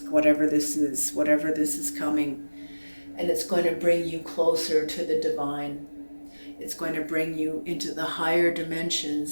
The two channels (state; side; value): inverted; both; correlation -1.00